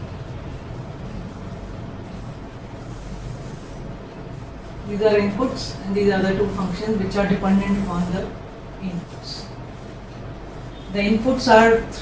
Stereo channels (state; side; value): identical; both; correlation 1.00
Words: These are inputs and these are the two functions which are dependent upon the inputs. The inputs are